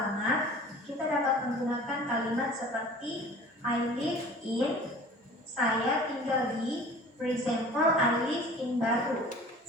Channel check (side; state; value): both; normal; correlation 0.44